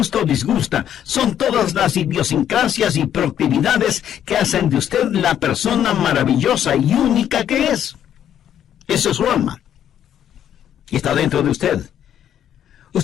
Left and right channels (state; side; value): quieter; right; 10.1 dB